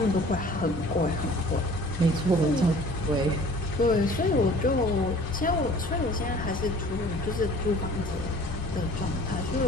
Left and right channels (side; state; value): both; normal; correlation 0.49